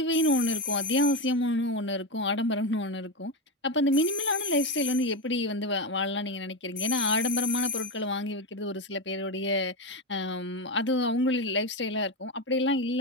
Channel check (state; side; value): normal; both; correlation 0.14